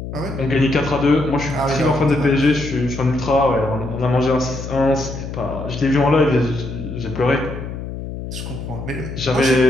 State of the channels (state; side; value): noise; left; hum, 8 dB below the sound